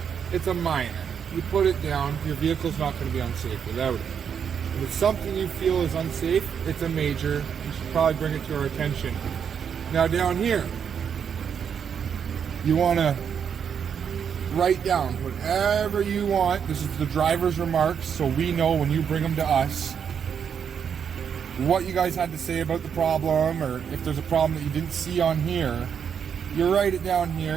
it's a minor. You put it down, your vehicle's not going to be unsafe without it. If it's something you feel is unsafe, it's a major. You should probably bring it to our attention. Now down here, you want to write down whatever you want. This is the driver's remarks, so we know when you bring them to us what you guys had to say about the problem, or if there's a problem that you didn't see on here, you write it down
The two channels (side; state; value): left; quieter; 7.5 dB